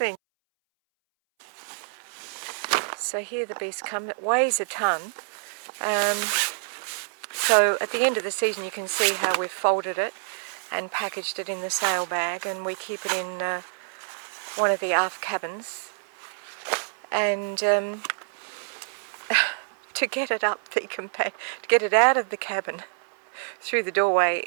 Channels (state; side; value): silent; left; 60 dB below the other